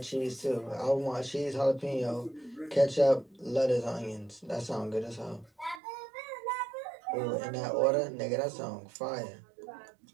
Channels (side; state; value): left; drops out; at 5.8 s